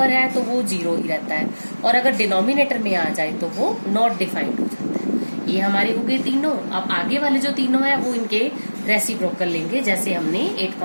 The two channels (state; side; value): inverted; both; correlation -1.00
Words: है तो वो 0 ही रहता है, और अगर डिनोमिनेटर में आ जाए तो वो नॉट डिफाइंड हो जाता है। ये हमारी हो गई तीनों। अब आगे वाले जो तीनों है वो इनके रेसिप्रोकल लेंगे, जैसे हमने